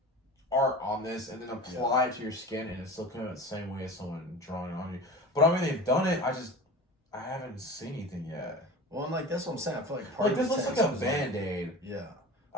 art on this and then apply it to your skin, and it's still coming out the same way as someone drawing on you. But I mean, they've done it. I haven't seen anything yet. Well, and like that's what I'm saying. I feel like this looks like a Band-Aid. Yeah.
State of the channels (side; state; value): both; normal; correlation 0.35